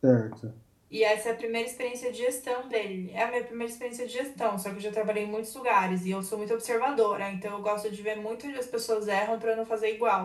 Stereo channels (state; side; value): identical; both; correlation 1.00